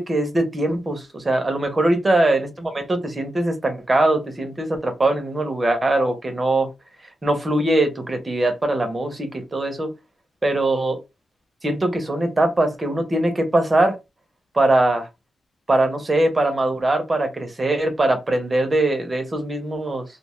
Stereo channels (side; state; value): both; normal; correlation 0.89